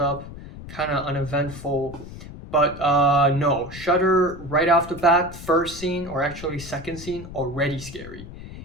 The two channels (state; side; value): noise; left; rumble, 13 dB below the sound